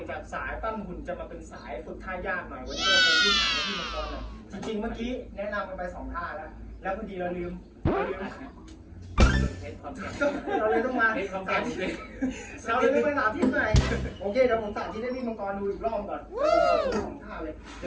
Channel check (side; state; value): both; identical; correlation 1.00